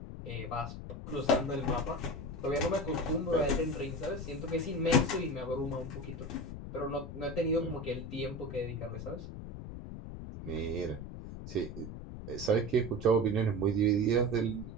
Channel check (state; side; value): noise; left; rumble, 9 dB below the sound